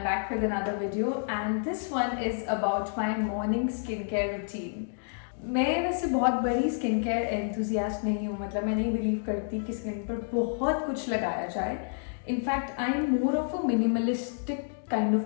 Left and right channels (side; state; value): right; silent; digital silence